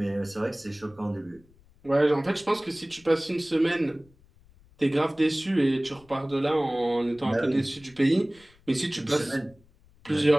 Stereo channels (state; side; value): noise; left; rumble, 29 dB below the sound